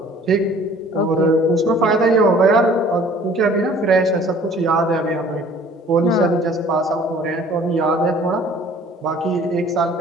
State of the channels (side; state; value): both; normal; correlation 0.52